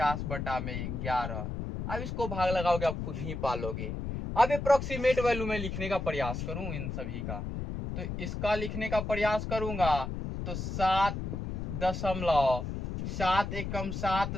अब इसको भाग लगाओगे आप खुद ही पालोगे। अब अप्रोक्सीमेट वैल्यू में लिखने का प्रयास करूं इन सभी का, तो इसका लिखने का प्रयास करूंगा तो 7 एकम 7,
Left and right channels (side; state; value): left; noise; rumble, 4 dB below the sound